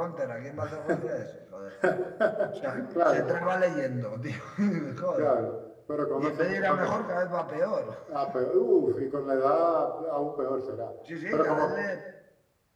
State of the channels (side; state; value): both; identical; correlation 1.00